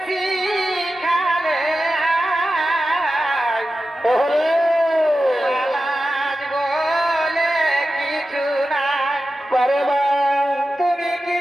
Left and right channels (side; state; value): both; normal; correlation 0.92